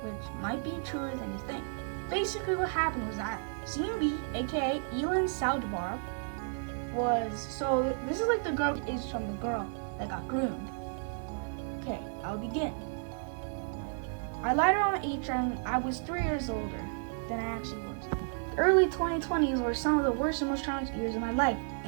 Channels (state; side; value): silent; left; 56 dB below the other